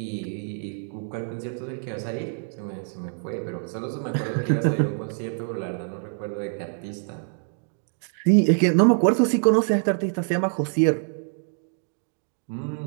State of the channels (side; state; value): left; silent; 61 dB below the other